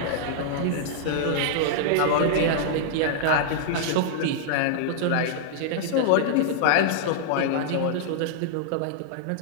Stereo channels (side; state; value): both; different; correlation -0.01